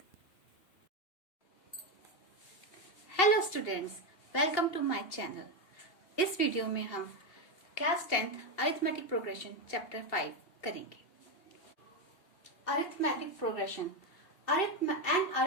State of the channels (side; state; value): right; late; 2.7 ms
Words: Hello students, welcome to my channel. इस video में हम class 10th arithmetic progression chapter 5 करेंगे. Arithmetic progression. An